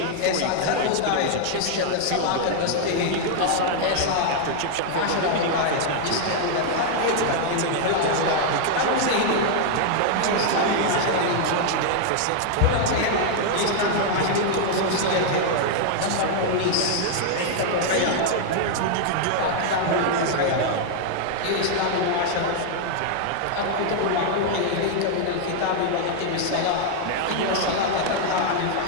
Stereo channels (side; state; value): both; different; correlation 0.00